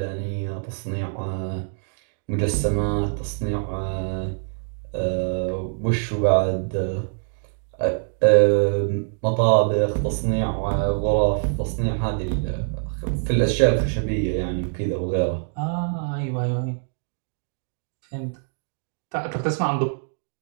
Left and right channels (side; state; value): left; silent; digital silence